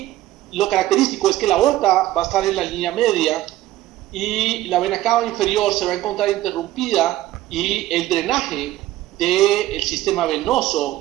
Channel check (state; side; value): quieter; left; 15.1 dB